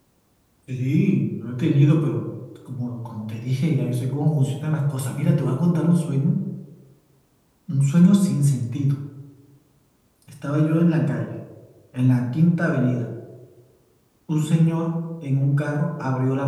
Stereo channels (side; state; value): both; identical; correlation 1.00